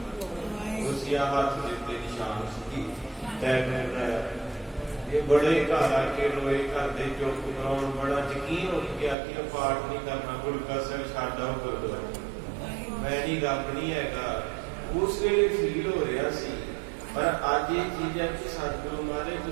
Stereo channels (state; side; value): drops out; left; at 9.2 s